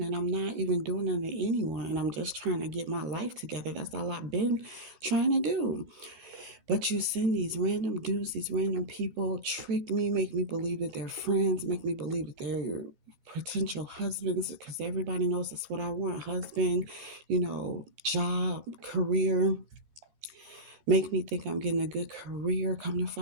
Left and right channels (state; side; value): late; left; 14 ms